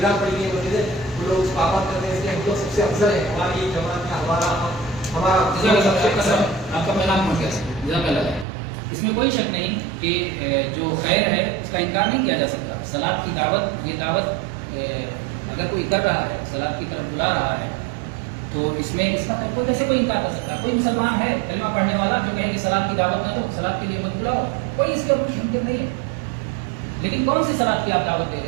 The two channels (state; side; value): drops out; left; at 8.5 s